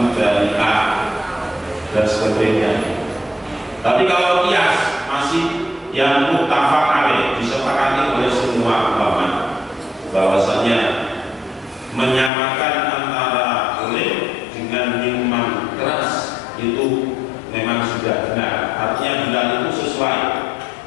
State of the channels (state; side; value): drops out; right; at 12.3 s